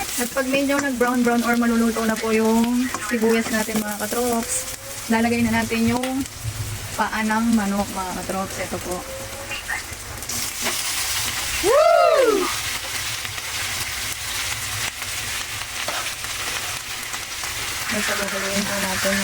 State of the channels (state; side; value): identical; both; correlation 1.00